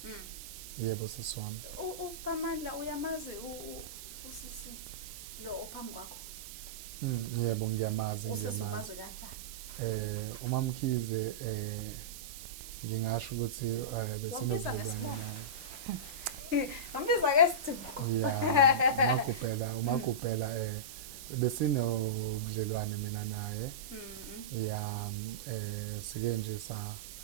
Yebo seswami. uSiphamandla uyamazi usisi lo ophambi kwakho? Yebo ngiyamazi. Usimazi kanjani? uMamkhize ngingasho ukuthi besinobudlelwane naye. Ngimbiza ke Sithuko. Yeah, uMagubhela besinobudlelwane mina naye. Sike nje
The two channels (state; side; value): noise; right; hiss, 12 dB below the sound